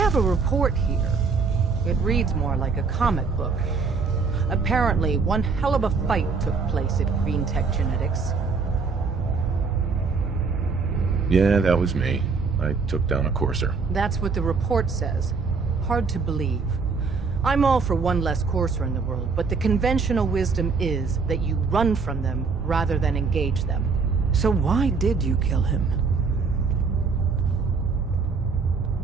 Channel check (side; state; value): left; quieter; 4.8 dB